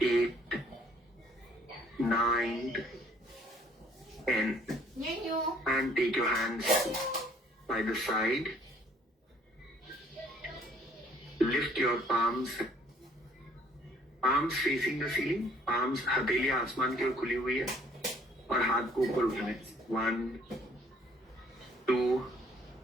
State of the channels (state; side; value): normal; both; correlation 0.60